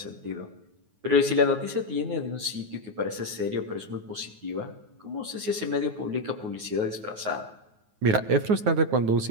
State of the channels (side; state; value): left; late; 9.4 ms